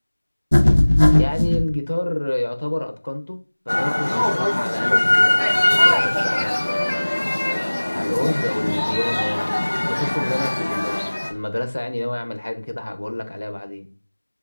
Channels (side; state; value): both; inverted; correlation -1.00